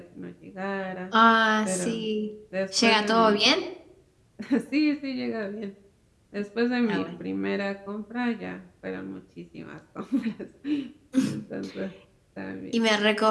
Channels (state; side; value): identical; both; correlation 1.00